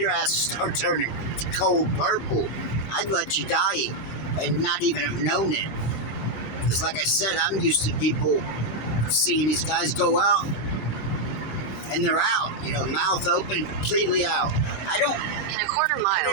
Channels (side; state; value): right; late; 25 ms